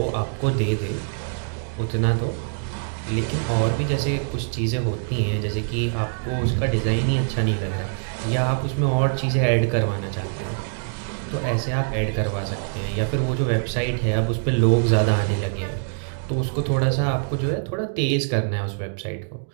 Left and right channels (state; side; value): silent; left; digital silence